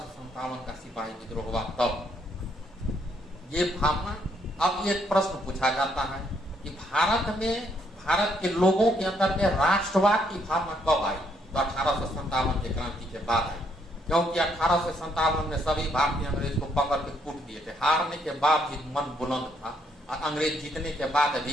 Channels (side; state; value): both; normal; correlation 0.72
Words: का सिपाही विद्रोह हुआ तब। ये भावना, अब एक प्रश्न पूछा जाता है कि भारत के लोगों के अंदर में राष्ट्रवाद की भावना कब आई? तो 1857 के क्रांति के बाद आई, क्योंकि 1857 में सभी भारतीय अंग्रेज को पकड़ के कूट दिए थे। हारने के बाद भी मन बुलंद था और अंग्रेज जीतने के बाद